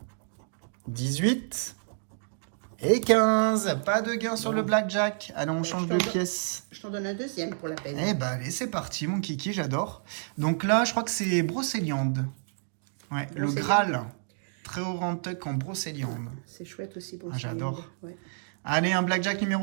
18. Et 15. Pas de gain sur le blackjack. Allez, on change de pièce. Je t'en donne un deuxième pour la peine. Eh ben, allez, c'est parti, mon kiki, j'adore. Donc là, je crois que c'est brocéliande. Ouais, le Brocéliande. Graal. Très haut rentuck en brocéliande. C'est chouette aussi pour Ah, j'adore. Ouais. Allez, un blackjack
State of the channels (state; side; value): silent; left; digital silence